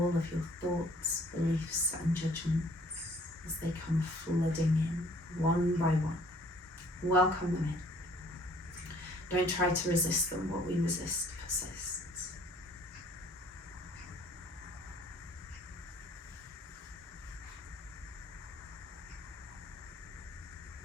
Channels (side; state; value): both; normal; correlation 0.57